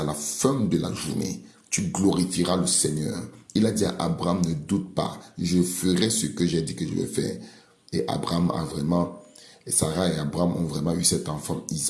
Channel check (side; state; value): both; identical; correlation 1.00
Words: la fin de la journée, tu glorifieras le Seigneur. Il a dit à Abraham, ne doute pas. Je ferai ce que j'ai dit que je vais faire. Et Abraham a vraiment, et Sarah et Abraham ont vraiment eu cet enfant,